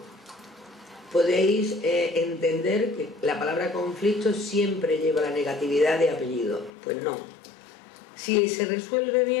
Podéis entender que la palabra conflicto siempre lleva la negatividad de apellido. Pues no. Si se resuelve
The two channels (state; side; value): drops out; right; at 6.7 s